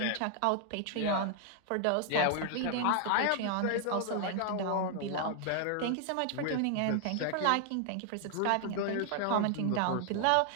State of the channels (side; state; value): both; different; correlation 0.00